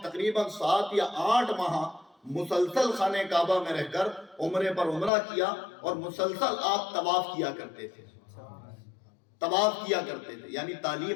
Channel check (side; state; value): right; drops out; at 5.1 s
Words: تقریباً 7 یا 8 ماہ مسلسل خانہ کعبہ میں رہ کر عمرے پر عمرہ کیا، اور مسلسل آپ طواف کیا کرتے تھے، طواف کیا کرتے تھے۔ یعنی